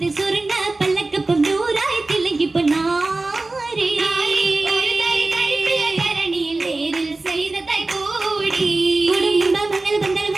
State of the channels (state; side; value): quieter; left; 3.2 dB